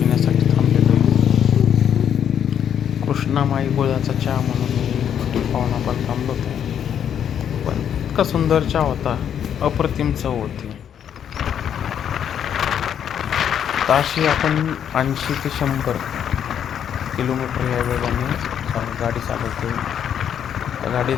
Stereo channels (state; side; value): quieter; right; 8.9 dB